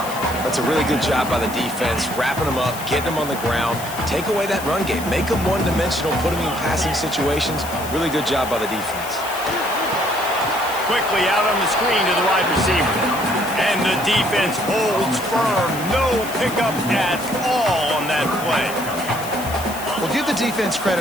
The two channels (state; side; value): noise; left; hiss, 12 dB below the sound